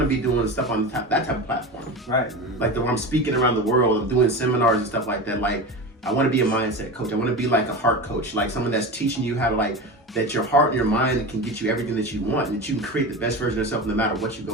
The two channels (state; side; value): normal; both; correlation 0.26